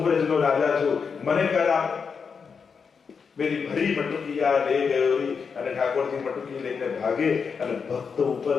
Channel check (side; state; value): right; quieter; 5.8 dB